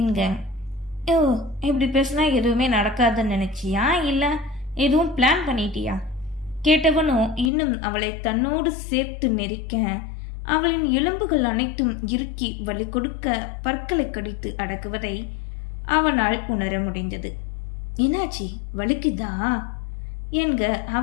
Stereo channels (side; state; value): right; drops out; at 7.5 s